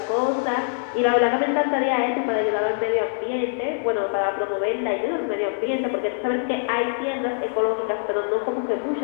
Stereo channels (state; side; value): silent; right; digital silence